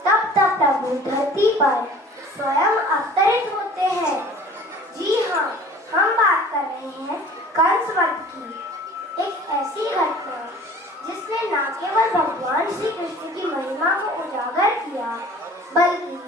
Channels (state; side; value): normal; both; correlation 0.47